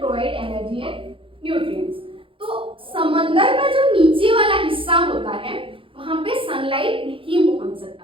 energy and nutrients. तो समंदर का जो नीचे वाला हिस्सा होता है वहां पे सनलाइट नहीं पहुंच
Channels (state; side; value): late; left; 0.25 ms